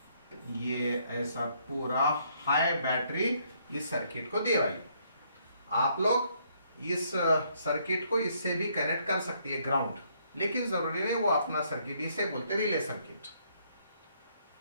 ये ऐसा पूरा हाई बैटरी इस सर्किट को दे वाली। आप लोग इस सर्किट को इससे भी कनेक्ट कर सकती है ग्राउंड, लेकिन जरूरी नहीं, वो अपना सर्किट, इसे बोलते रिले सर्किट।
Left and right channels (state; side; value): inverted; both; correlation -0.69